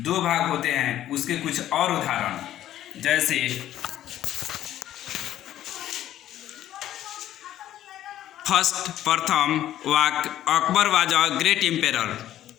भाग होते हैं, उसके कुछ और उदाहरण। जैसे फर्स्ट प्रथम वाक्य, Akbar was a great emperor,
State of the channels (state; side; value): quieter; right; 12.5 dB